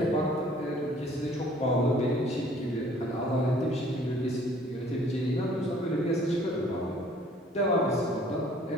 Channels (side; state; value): both; normal; correlation 0.56